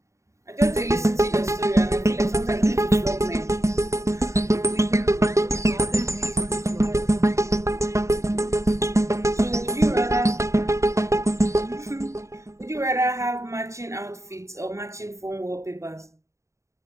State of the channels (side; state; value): left; late; 0.14 ms